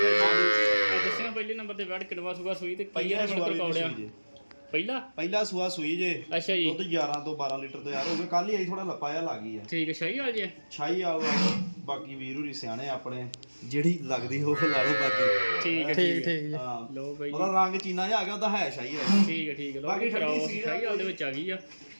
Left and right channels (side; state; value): both; inverted; correlation -1.00